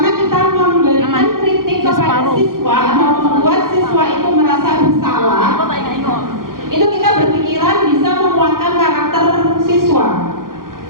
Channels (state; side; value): late; left; 0.91 ms